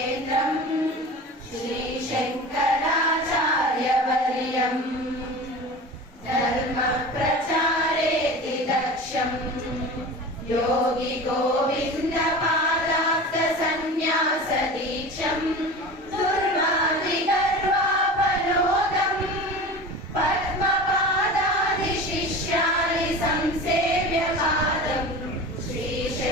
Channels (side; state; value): both; normal; correlation 0.33